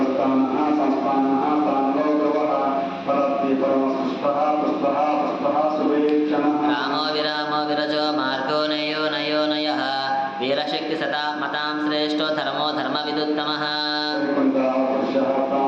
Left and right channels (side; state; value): both; identical; correlation 1.00